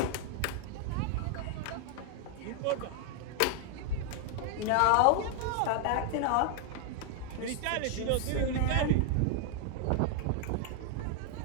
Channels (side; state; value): both; different; correlation 0.00